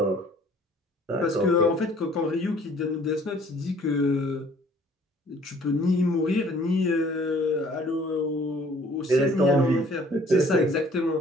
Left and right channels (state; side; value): normal; both; correlation 0.56